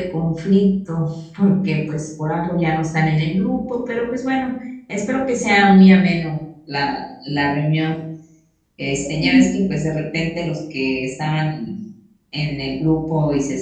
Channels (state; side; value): identical; both; correlation 1.00